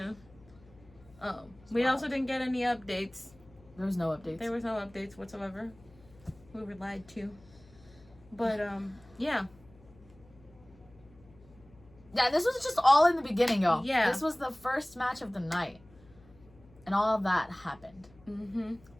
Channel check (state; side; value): noise; left; hum, 25 dB below the sound